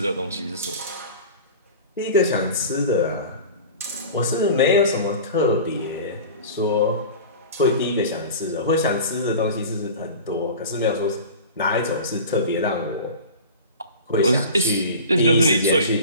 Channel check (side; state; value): both; inverted; correlation -0.35